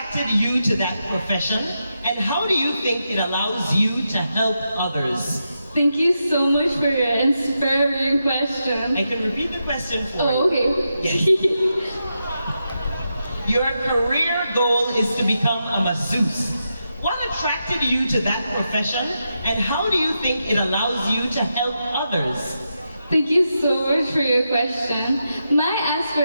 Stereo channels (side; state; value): both; inverted; correlation -0.86